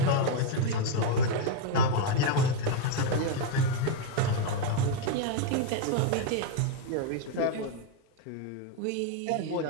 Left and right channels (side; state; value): both; different; correlation 0.01